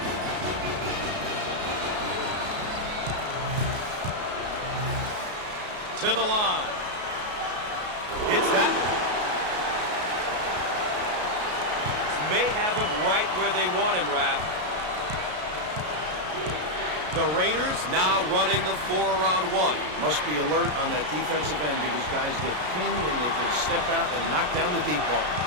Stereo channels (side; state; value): left; late; 33 ms